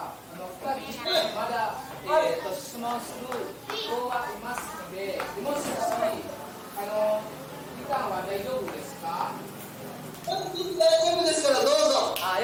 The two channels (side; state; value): both; identical; correlation 1.00